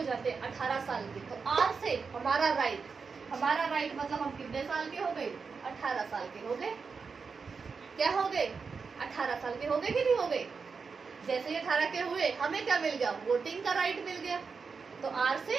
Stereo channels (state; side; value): quieter; left; 5.2 dB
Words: जाते हैं? 18 साल के। तो आर से हमारा राइट, हमारा राइट मतलब हम कितने साल के हो गए? 18 साल के हो गए। क्या हो गए? 18 साल के हो गए कि नहीं हो गए? जैसे ही 18 के हुए हमें क्या मिल गया? वोटिंग का राइट मिल गया। तो आर